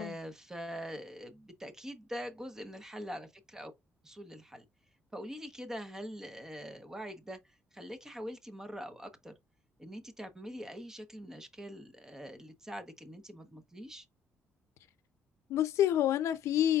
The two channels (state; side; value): quieter; right; 7.6 dB